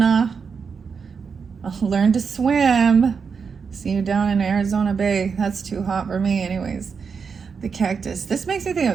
I'll learn to swim. See you down in Arizona Bay. That's too hot for me anyways. The cactus. This makes me think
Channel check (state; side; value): quieter; left; 5.8 dB